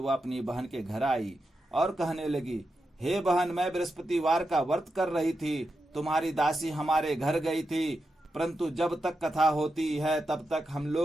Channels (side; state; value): both; normal; correlation 0.88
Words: अपनी बहन के घर आई और कहने लगी, हे बहन, मैं बृहस्पतिवार का व्रत कर रही थी, तुम्हारी दासी हमारे घर गई थी, परंतु जब तक कथा होती है तब तक हम